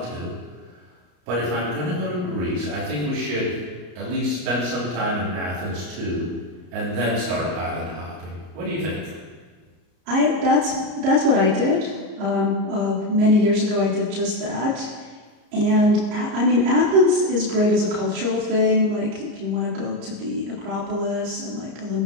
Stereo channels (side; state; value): left; late; 33 ms